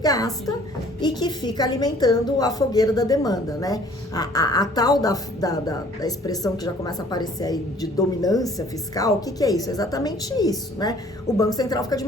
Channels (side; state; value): both; normal; correlation 0.55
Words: gasta e que fica alimentando a fogueira da demanda, né? A tal da expressão que já começa a aparecer aí de dominância fiscal, o que é isso? É exatamente isso, né? O Banco Central fica de